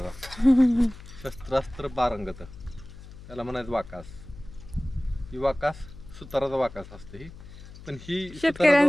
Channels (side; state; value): left; noise; hum, 17 dB below the sound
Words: शस्त्रास्त्र पारंगत, त्याला म्हणायचं वाकास. ही वाकास सुताराचा वाकास असते ही. पण ही